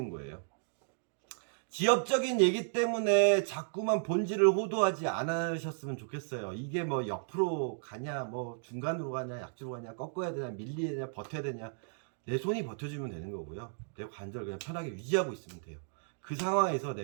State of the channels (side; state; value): left; silent; digital silence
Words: 거예요. 지엽적인 얘기 때문에 자꾸만 본질을 호도하지 않으셨으면 좋겠어요. 이게 뭐 옆으로 가냐, 뭐 중간으로 가냐, 약지로 가냐, 꺾어야 되냐, 밀려야 되냐, 버텨야 되냐. 내 손이 버텨주면 되는 거고요. 내 관절 그냥 편하게 유지하고 있으면 돼요. 그 상황에서